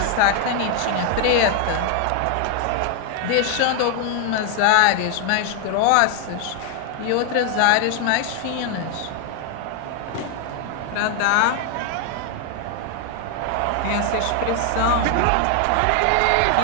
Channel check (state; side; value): different; both; correlation 0.00